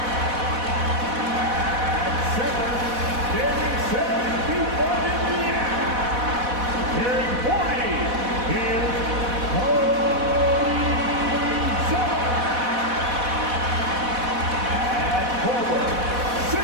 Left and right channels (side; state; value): left; late; 4.1 ms